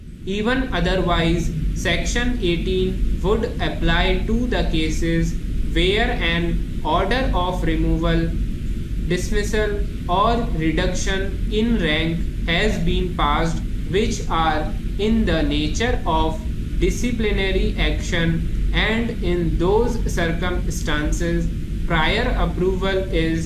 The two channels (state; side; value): identical; both; correlation 1.00